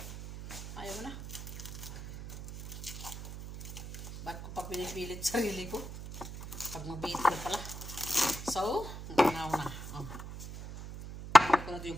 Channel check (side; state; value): right; noise; hum, 10 dB below the sound